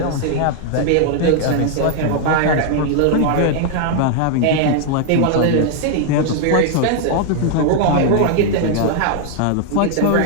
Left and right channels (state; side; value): different; both; correlation 0.00